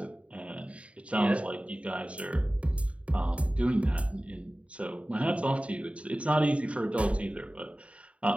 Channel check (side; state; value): left; late; 0.063 ms